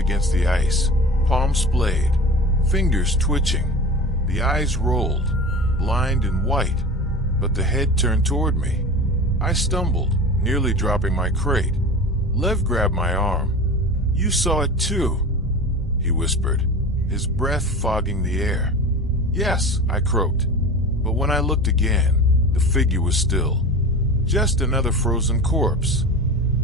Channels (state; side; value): normal; both; correlation 0.33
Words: the ice, palm splayed, fingers twitching. The eyes rolled, blind and white, but the head turned toward me. I stumbled, nearly dropping my crate. Lev grabbed my arm. "You saw it too," he whispered, his breath fogging the air. "Yes," I croaked. But when I looked again, the figure was still. Just another frozen corpse.